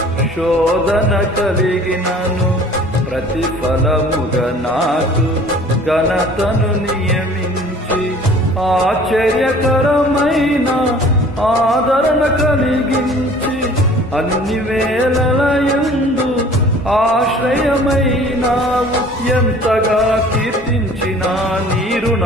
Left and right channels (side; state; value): both; normal; correlation 0.50